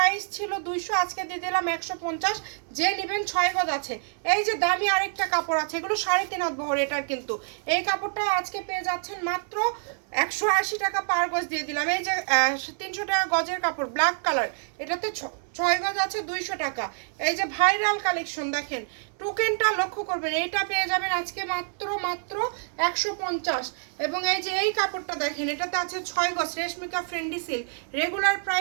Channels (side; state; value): left; silent; 60 dB below the other